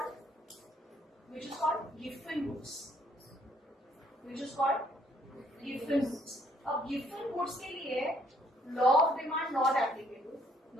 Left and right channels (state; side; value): normal; both; correlation 0.66